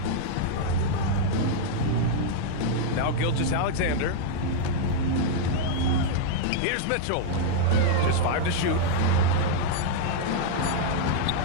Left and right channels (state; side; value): different; both; correlation -0.01